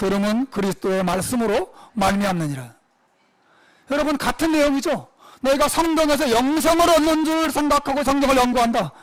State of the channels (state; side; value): identical; both; correlation 1.00